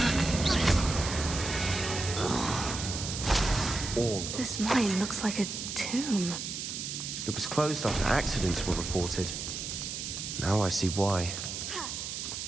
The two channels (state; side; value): noise; right; hiss, 5 dB below the sound